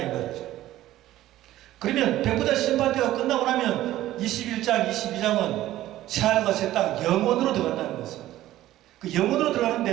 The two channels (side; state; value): left; quieter; 14.5 dB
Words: 말이죠. 그러면 백보자 심판대가 끝나고 나면 21장, 22장은 새하늘과 새 땅 영원으로 들어간다는 것입니다. 그 영원으로